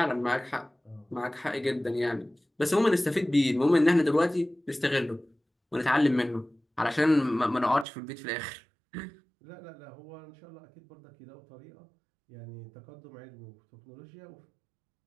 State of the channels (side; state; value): left; drops out; at 7.9 s